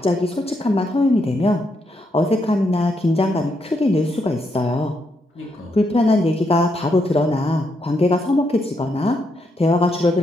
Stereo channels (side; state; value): both; normal; correlation 0.79